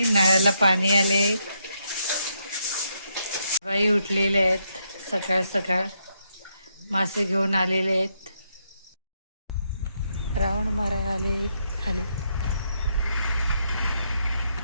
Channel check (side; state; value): both; inverted; correlation -0.78